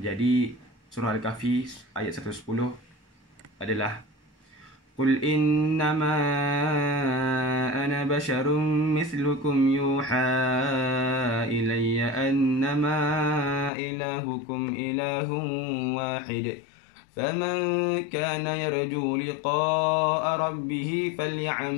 surah Al-Kahfi ayat 110 adalah Qul innama ana basyarum mithlukum yuha ilayya annama ilahukum ilahun wahid faman kana yarju liqa'a rabbih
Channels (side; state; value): right; drops out; at 13.7 s